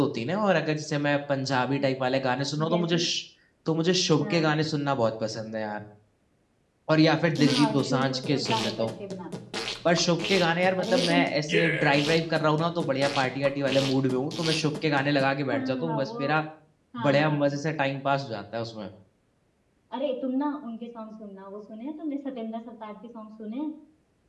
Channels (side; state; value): both; identical; correlation 1.00